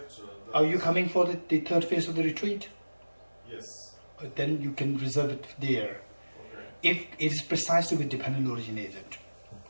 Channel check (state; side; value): inverted; both; correlation -1.00